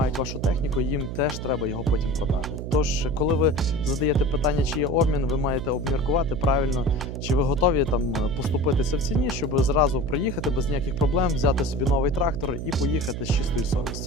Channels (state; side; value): noise; right; hum, 6 dB below the sound